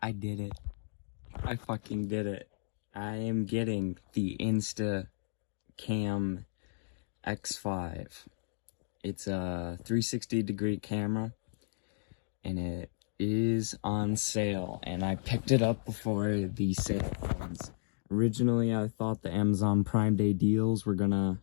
I did it. I fucking did it. I am getting the Instacam X5. It's a 360-degree camera, and it is on sale, and I picked it up before the sale ends. Originally, I thought the Amazon Prime Day deals were gonna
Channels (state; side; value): silent; right; digital silence